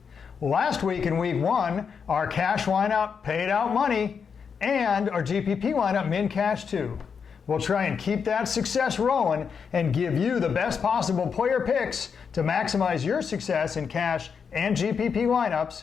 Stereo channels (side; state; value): right; quieter; 6.3 dB